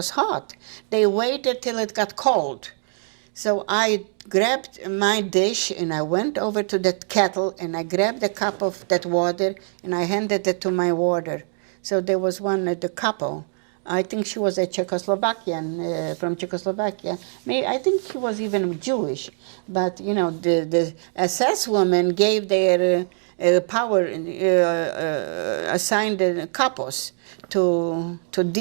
hot. They waited till it got cold. So I grabbed my dish and I went over to that kettle and I grabbed a cup of that water and I handed it to my warder. So there was one at the couple. I think she was a Czechoslovakian, from Czechoslovakia. I think she was even Jewish. But, you know, the SS women gave their power, assigned couples to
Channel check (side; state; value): left; silent; 60 dB below the other